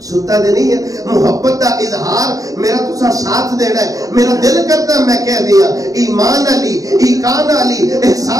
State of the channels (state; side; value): late; left; 0.17 ms